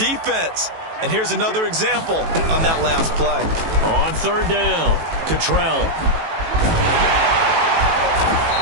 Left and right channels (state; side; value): late; left; 18 ms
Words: And here's another example on that last play. On 3rd down, Cottrell.